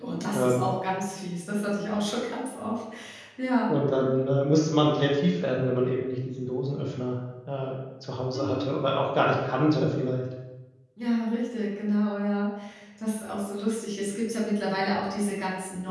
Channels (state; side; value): identical; both; correlation 1.00